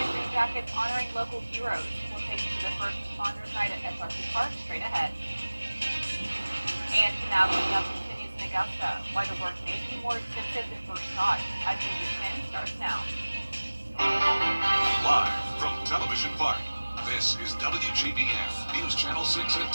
Green Jackets honoring local heroes. We'll take you to the first responders night at SRC Park straight ahead. And now coming up continues in Augusta. Why the work may be more expensive than first thought. As News at 10 starts now. Live from Television Park, this is WJBF News Channel 6 at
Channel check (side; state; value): both; inverted; correlation -1.00